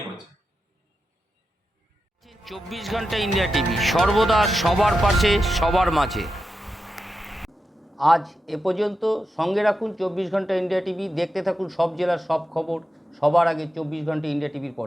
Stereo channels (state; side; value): normal; both; correlation 0.89